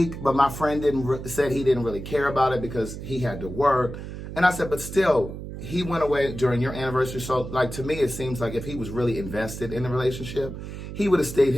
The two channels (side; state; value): right; noise; hum, 9 dB below the sound